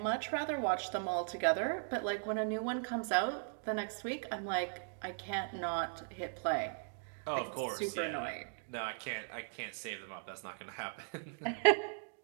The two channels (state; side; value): silent; left; digital silence